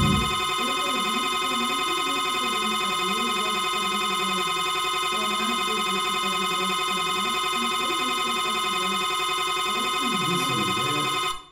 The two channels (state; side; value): identical; both; correlation 1.00